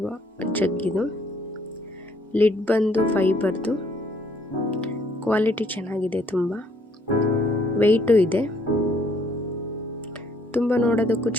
ಜಗ್ಗಿದು. ಲಿಡ್ ಬಂದು ಫೈಬರ್ದು. ಕ್ವಾಲಿಟಿ ಚೆನ್ನಾಗಿದೆ, ತುಂಬ ವೆಯ್ಟು ಇದೆ, ತುಂಬ ನೋಡೋದಕ್ಕೂ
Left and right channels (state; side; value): normal; both; correlation 0.65